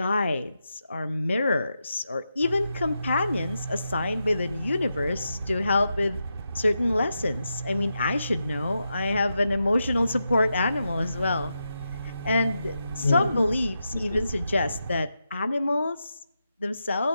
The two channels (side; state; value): both; inverted; correlation -0.87